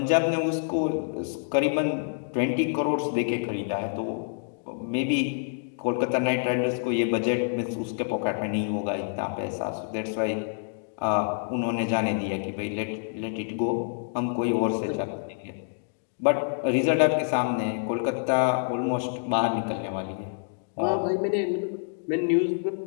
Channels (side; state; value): right; silent; digital silence